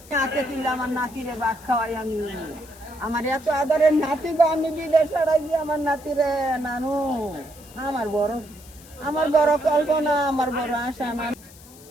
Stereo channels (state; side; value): noise; left; hiss, 22 dB below the sound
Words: হাতে তুললে আমার নাতিরে ভাত খাওয়াই আমি, আমার এত আদরের নাতি গো, আমি বিদেশ পাঠাইছি আমার নাতিরে, নানু আমার বড় কল্পনা, আমার বড় আশা।